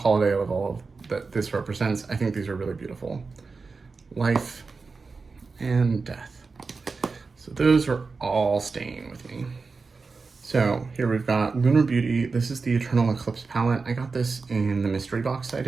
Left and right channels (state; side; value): quieter; left; 4.4 dB